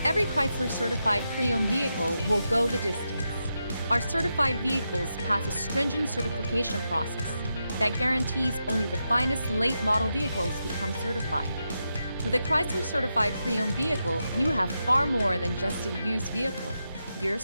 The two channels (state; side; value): inverted; both; correlation -0.87